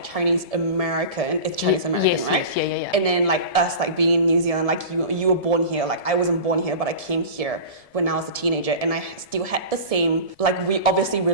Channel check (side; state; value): right; late; 1.7 ms